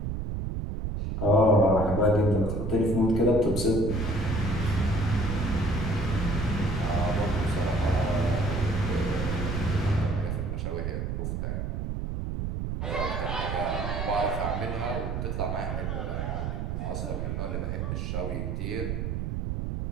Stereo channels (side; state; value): right; noise; rumble, 2 dB below the sound